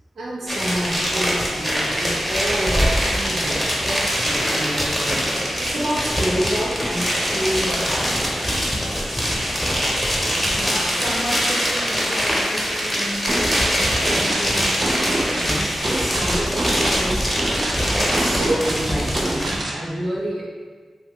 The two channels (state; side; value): normal; both; correlation 0.91